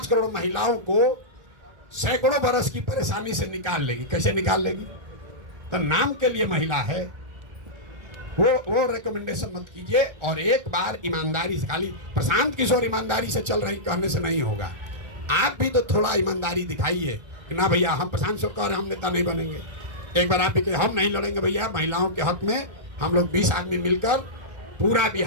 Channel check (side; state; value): left; late; 1.4 ms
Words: करोड़ महिलाओं को सैकड़ों बरस की परेशानी से निकाल लेगी। कैसे निकाल लेगी? तो नाम के लिए महिला है, वो रिकमेंडेशन मत कीजिए। और एक बार ईमानदारी से, खाली प्रशांत किशोर ईमानदारी से चल रही कहने से नहीं होगा, आप भी तो थोड़ा ईमानदारी दिखाइए कि ना भैया हम प्रशांत किशोर कह रहे हम नेता नहीं बनेंगे। एक बार आप भी कहे हम नहीं लड़ेंगे भैया, महिलाओं के हक में हम लोग 20 आदमी मिलकर पूरा